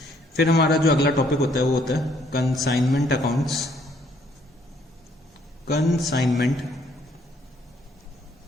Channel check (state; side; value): normal; both; correlation 0.66